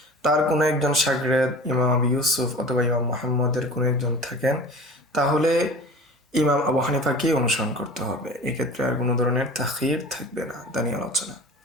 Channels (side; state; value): both; normal; correlation 0.39